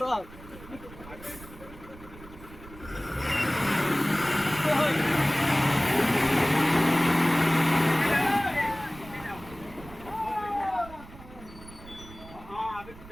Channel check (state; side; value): noise; right; rumble, 18 dB below the sound